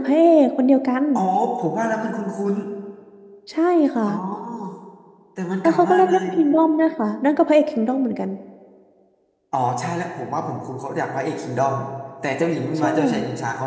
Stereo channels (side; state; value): both; identical; correlation 1.00